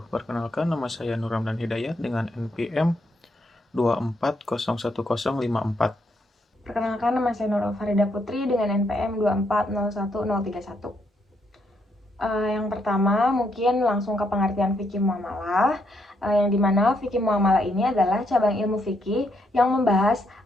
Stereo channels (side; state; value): both; normal; correlation 0.76